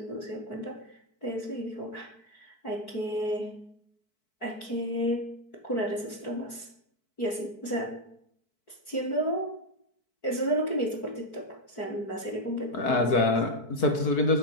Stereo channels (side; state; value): right; late; 4.6 ms